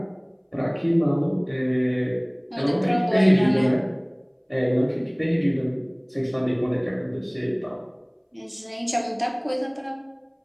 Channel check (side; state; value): both; identical; correlation 1.00